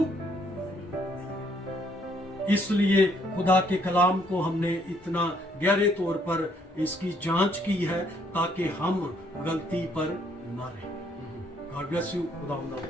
इसलिए खुदा के कलाम को हमने इतना गहरे तौर पर इसकी जांच की है ताकि हम गलती पर ना रहें। God bless you. खुदा आपको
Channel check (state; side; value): normal; both; correlation 0.68